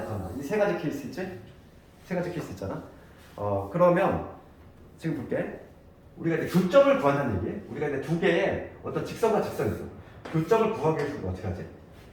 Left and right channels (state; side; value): identical; both; correlation 1.00